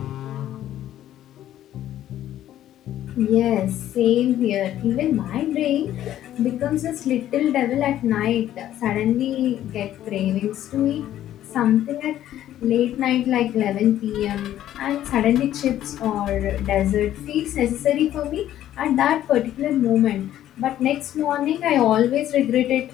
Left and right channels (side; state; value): right; quieter; 12.3 dB